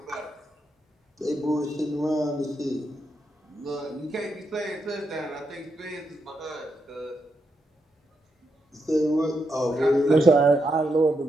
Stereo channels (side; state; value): both; normal; correlation 0.82